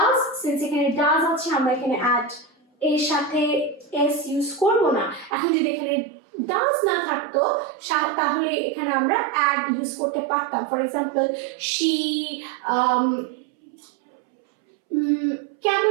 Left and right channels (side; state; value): left; drops out; at 5.4 s